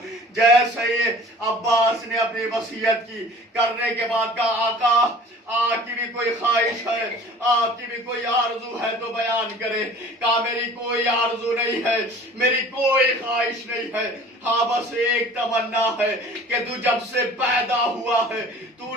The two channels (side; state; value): both; normal; correlation 0.46